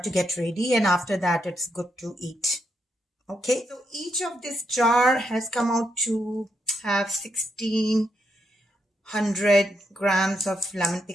get ready. And after that, it's good to eat. Okay, so each of this jar has come out to have 1,600 grams of lemon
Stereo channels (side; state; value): both; normal; correlation 0.80